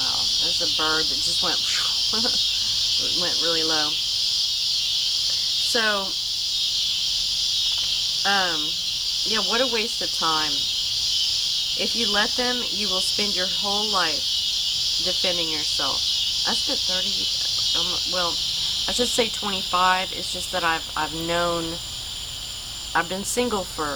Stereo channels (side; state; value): right; noise; hiss, 18 dB below the sound